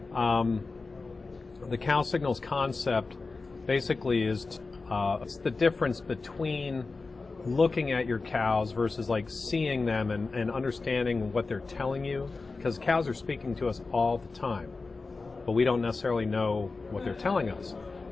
The CowSignals concept basically is it's the difference between looking at your cows versus like seeing them and understanding what they're telling you, because cows are speaking to us all the time, but we don't necessarily know what they're telling us.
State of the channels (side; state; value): right; quieter; 3.9 dB